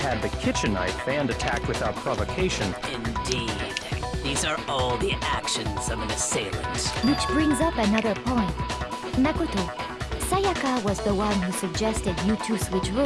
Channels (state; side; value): identical; both; correlation 1.00